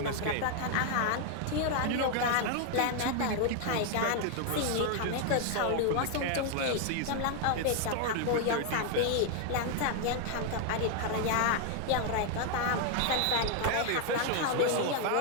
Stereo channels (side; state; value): both; different; correlation 0.00